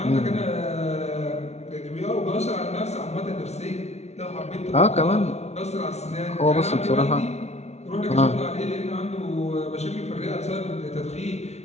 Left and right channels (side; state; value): right; late; 0.31 ms